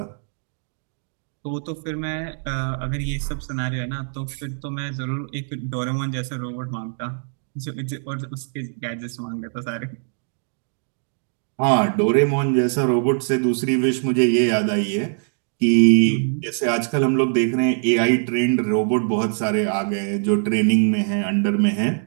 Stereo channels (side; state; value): left; silent; 64 dB below the other